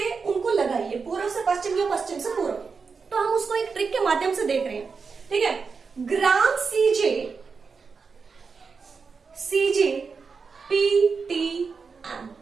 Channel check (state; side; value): quieter; left; 5.1 dB